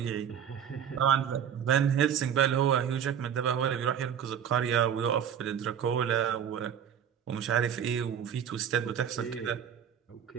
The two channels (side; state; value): left; quieter; 8.7 dB